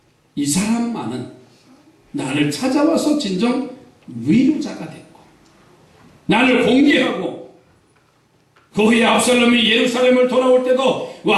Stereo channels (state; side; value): identical; both; correlation 1.00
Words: 이 사람만은 나를 찾아와서 진정 위로자가 됐고 나를 공개하고 그 후에 압살롬이 예루살렘을 돌아올 때도